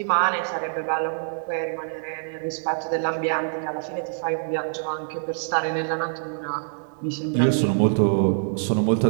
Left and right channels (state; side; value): silent; left; digital silence